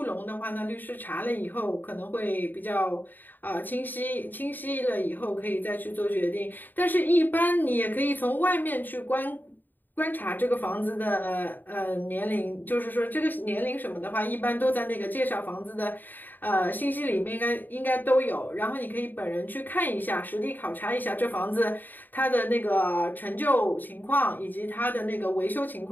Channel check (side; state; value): right; late; 0.089 ms